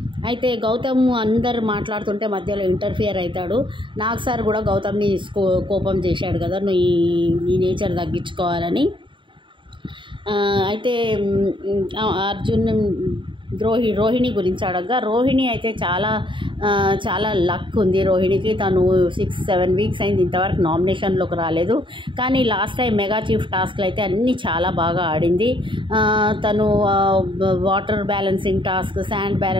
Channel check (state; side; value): late; left; 0.24 ms